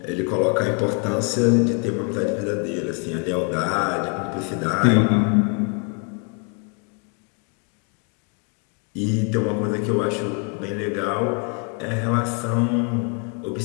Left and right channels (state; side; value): quieter; right; 36.8 dB